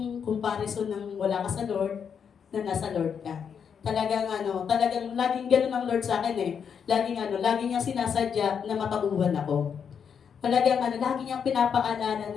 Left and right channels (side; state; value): right; quieter; 7.2 dB